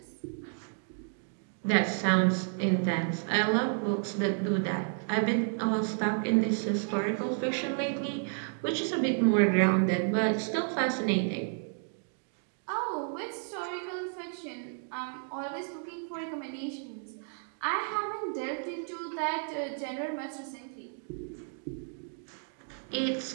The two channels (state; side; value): silent; left; 57 dB below the other